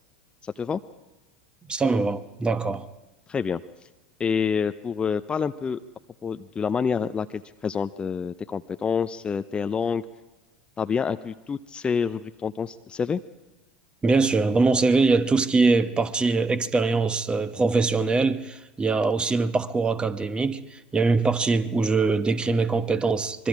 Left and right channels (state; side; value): normal; both; correlation 0.80